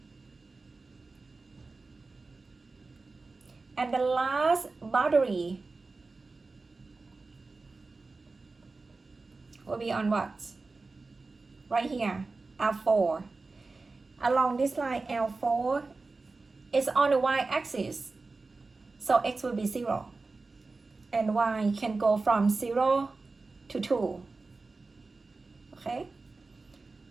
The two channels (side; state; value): left; quieter; 3.7 dB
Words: And the last boundary will be on what? Right here, L4. Along this line, L4 is on the y-axis. So x will be 0. And y can go from 0 to 2. Okay?